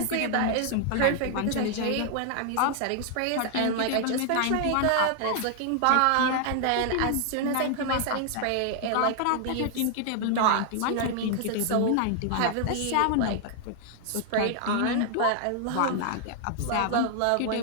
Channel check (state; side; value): different; both; correlation 0.00